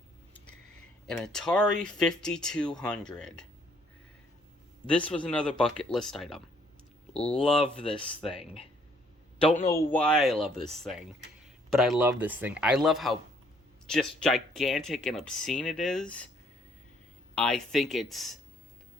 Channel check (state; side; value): normal; both; correlation 0.65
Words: An Atari 5200. This was another bucket list item. Love this thing. Don't know why I love this thing, but I love this thing. I love how just gigantic and obscene it is. I think it's